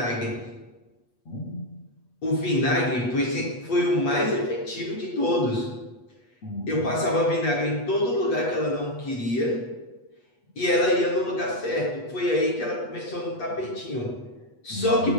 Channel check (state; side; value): late; right; 8.3 ms